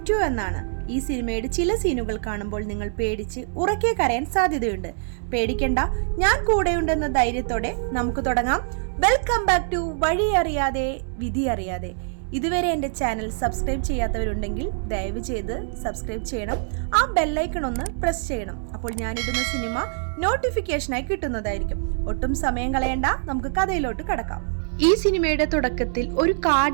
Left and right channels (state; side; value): silent; left; digital silence